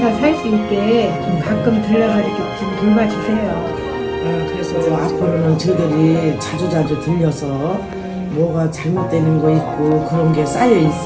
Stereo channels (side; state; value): both; identical; correlation 1.00